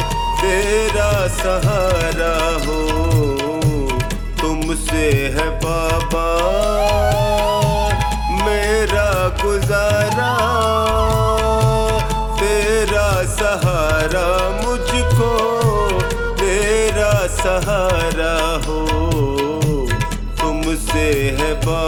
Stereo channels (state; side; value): identical; both; correlation 1.00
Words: तेरा सहारा हो। तुमसे है बाबा मेरा गुजारा, तेरा सहारा मुझको तेरा सहारा हो। तुमसे है